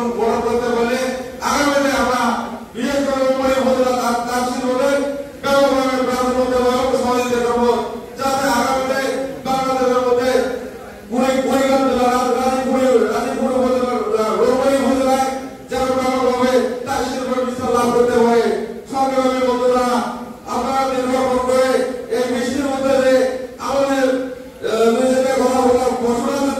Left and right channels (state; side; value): identical; both; correlation 1.00